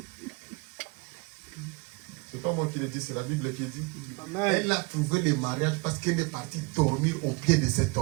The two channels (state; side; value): quieter; left; 27.9 dB